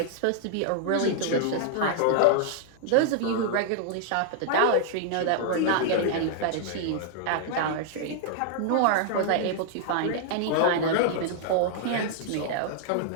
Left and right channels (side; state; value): both; different; correlation -0.01